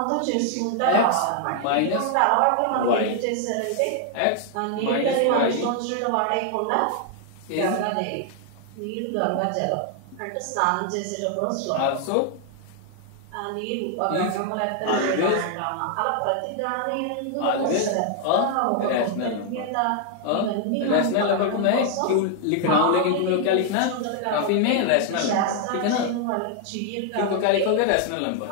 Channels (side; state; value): both; different; correlation 0.00